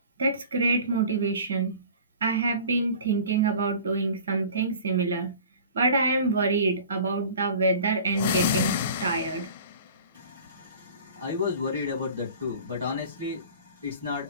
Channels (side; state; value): both; inverted; correlation -0.43